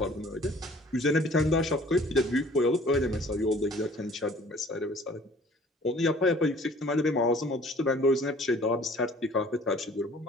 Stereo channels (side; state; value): both; normal; correlation 0.52